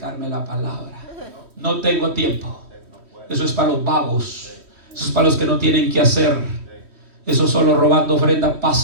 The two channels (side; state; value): left; late; 3.1 ms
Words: la palabra. No tengo tiempo. Eso es para los vagos. Eso es para los que no tienen que hacer. Eso solo robando ofrenda